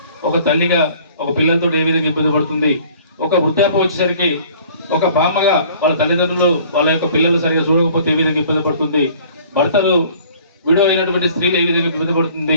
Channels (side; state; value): both; inverted; correlation -0.53